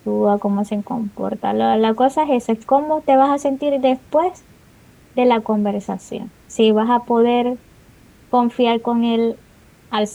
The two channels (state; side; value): identical; both; correlation 1.00